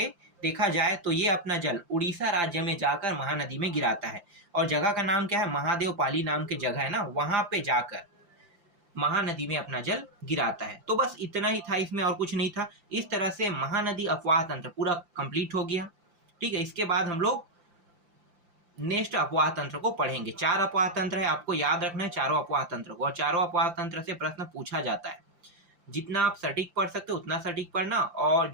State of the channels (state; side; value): late; left; 5.8 ms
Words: देखा जाए तो ये अपना जल उड़ीसा राज्य में जाकर महानदी में गिराता है। और जगह का नाम क्या है? महादेव पाली नाम की जगह है ना, वहां पे जाकर महानदी में अपना जल गिराता है। तो बस इतना ही था, इसमें और कुछ नहीं था। इस तरह से महानदी अपवाह तंत्र पूरा कंप्लीट हो गया। ठीक है, इसके बाद हम लोग नेक्स्ट अपवाह तंत्र को पढ़ेंगे। 4 अपवाह तंत्र है, आपको याद रखना है चारों अपवाह तंत्र को, और चारों अपवाह तंत्र से प्रश्न पूछा जाता है। जितना आप सटीक पढ़ सकते हो उतना सटीक पढ़ना, और